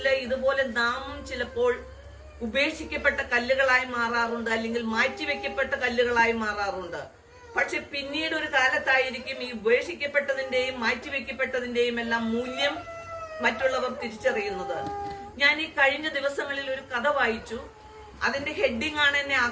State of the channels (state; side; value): identical; both; correlation 1.00